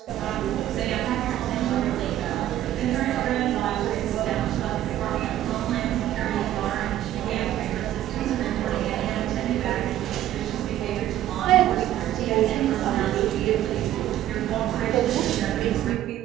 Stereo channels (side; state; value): left; quieter; 12.8 dB